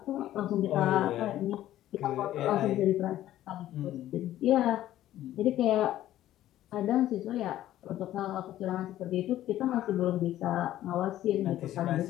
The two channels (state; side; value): quieter; right; 13.4 dB